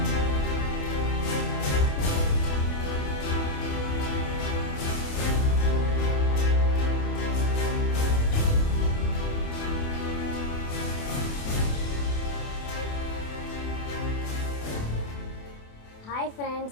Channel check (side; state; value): right; late; 28 ms